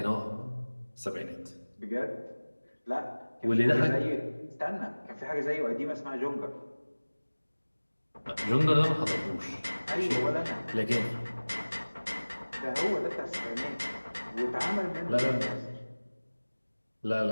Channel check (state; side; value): inverted; both; correlation -1.00